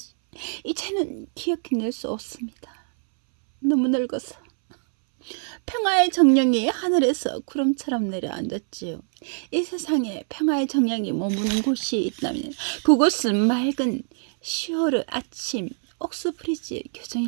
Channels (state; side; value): silent; left; 62 dB below the other